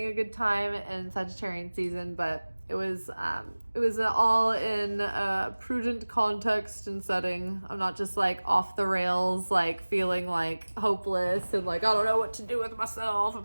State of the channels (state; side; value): inverted; both; correlation -1.00